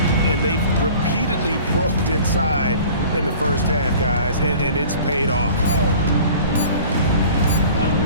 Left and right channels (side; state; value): both; inverted; correlation -0.45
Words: And they've repeatedly probed inside in the first half, guys, and it's paid off.